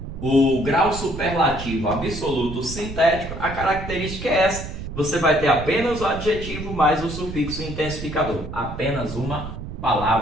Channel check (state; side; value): noise; right; rumble, 9 dB below the sound